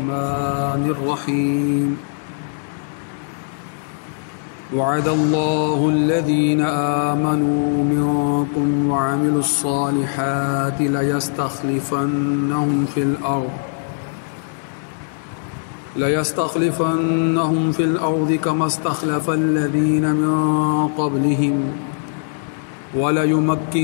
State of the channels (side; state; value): right; silent; 60 dB below the other